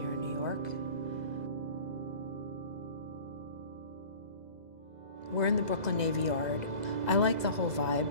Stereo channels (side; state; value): left; late; 2.0 ms